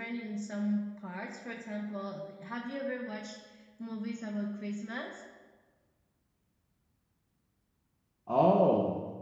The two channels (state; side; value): identical; both; correlation 1.00